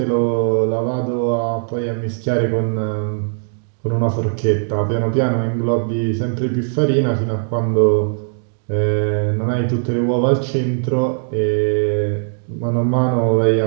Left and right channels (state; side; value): silent; left; digital silence